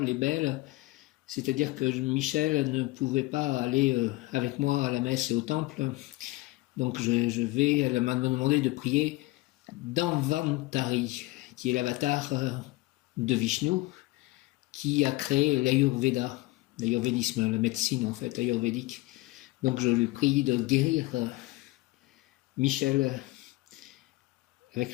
et belle. C'est-à-dire que Michel ne pouvait pas aller avec moi à la messe et au temple. Donc elle m'a demandé de prier Dhanvantari, qui est l'avatar de Vishnu, qui a créé l'Ayurveda, l'ayurvédisme, la médecine en fait, ayurvédique. Donc je lui prie de guérir Michel avec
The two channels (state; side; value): quieter; right; 20.1 dB